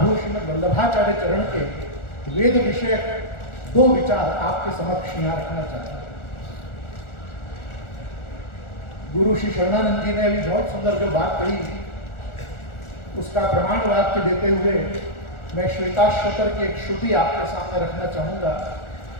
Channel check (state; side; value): late; right; 1.4 ms